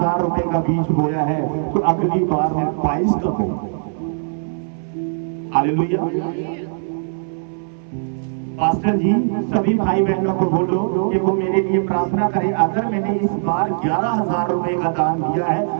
रुपए का बीज बोया है तो अगली बार मैं 22 का बोऊंगा। हालेलुया। पास्टर जी सभी भाई बहनों को बोलो कि वो मेरे लिए प्रार्थना करें, अगर मैंने इस बार 11,000 रुपए का दान दिया है,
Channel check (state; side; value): silent; left; 62 dB below the other